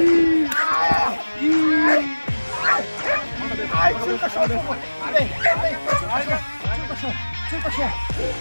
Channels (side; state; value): both; inverted; correlation -1.00